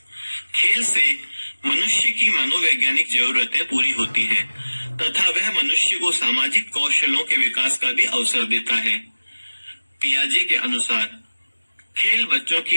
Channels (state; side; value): inverted; both; correlation -1.00